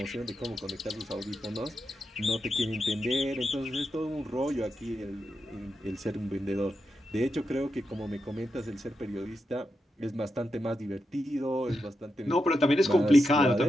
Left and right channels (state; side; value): normal; both; correlation 0.87